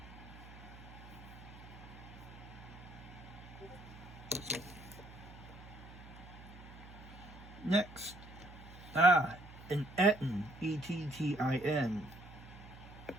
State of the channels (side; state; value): right; noise; hum, 16 dB below the sound